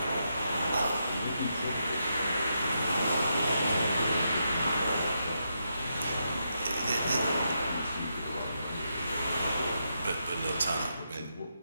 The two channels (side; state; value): both; inverted; correlation -0.82